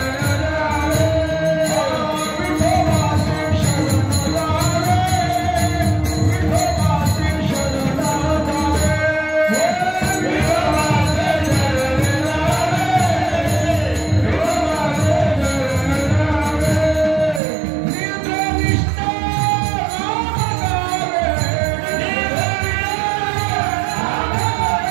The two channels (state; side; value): drops out; left; at 17.4 s